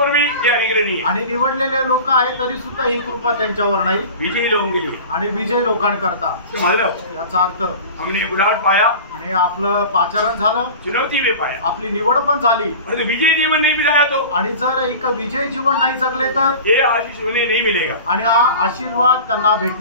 भी ये अनुग्रह नहीं है आणि निवडलेले लोक आहेत तरी सुद्धा ही कृपा त्यांच्यावर नाही। विजयी लोगों के लिए आणि विजय लोकांकरता मतलब याचा अर्थ हमने बुलाट पाया आणि आपलं पाचारण झालं, चुनौती में पाया, आपली निवड पण झाली। विजय जीवन नहीं बिताया तो आणि जर एक विजय जीवन नाही जगले तर ये आशीष उन्हें नहीं मिलेगा आणि हा आशीर्वाद त्यांना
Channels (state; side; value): inverted; both; correlation -0.37